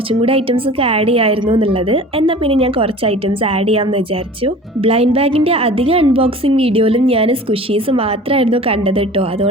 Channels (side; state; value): both; normal; correlation 0.42